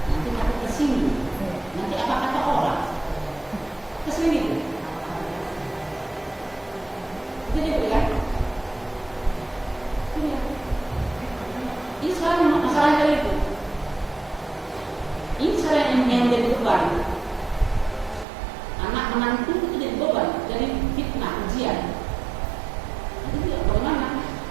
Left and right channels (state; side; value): drops out; left; at 18.2 s